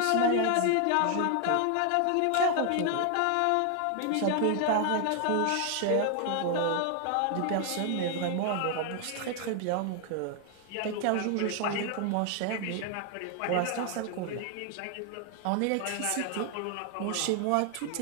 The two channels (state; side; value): different; both; correlation 0.00